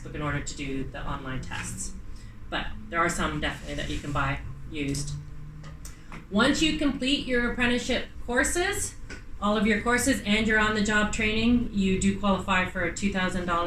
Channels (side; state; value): both; identical; correlation 1.00